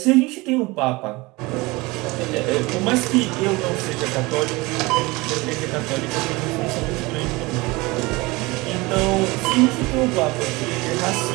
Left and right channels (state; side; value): quieter; left; 23.1 dB